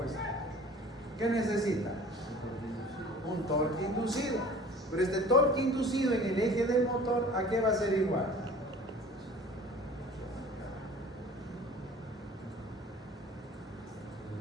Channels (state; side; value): normal; both; correlation 0.45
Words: ¿Qué necesita? un torque inducido. Pero este torque inducido en el eje del motor, ¿a qué va a ser igual?